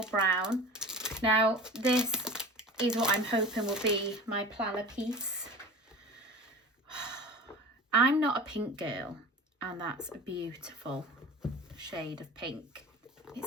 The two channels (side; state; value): both; normal; correlation 0.36